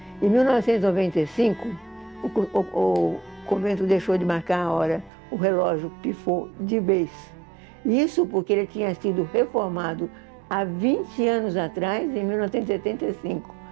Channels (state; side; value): drops out; left; at 5.1 s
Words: Em 1995, o convento deixou de marcar a hora, o relógio pifou de vez. Isso porque ele tinha sido reformado há 20 anos atrás, em 1975.